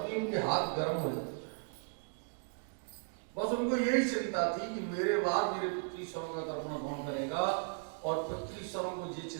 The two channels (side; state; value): left; silent; 54 dB below the other